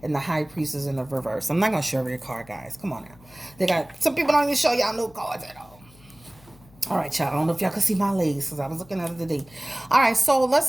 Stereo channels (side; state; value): left; noise; hum, 25 dB below the sound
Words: and the High Priestess in the reverse. I'm not going to show every card, guys. Come on now. They got some people don't even show y'all no cards at all. All right, y'all. I don't know if y'all can see my legs because I was looking at it today. All right, so